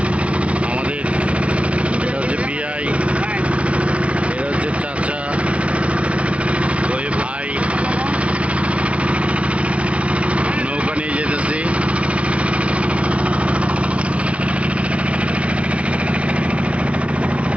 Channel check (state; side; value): late; left; 0.062 ms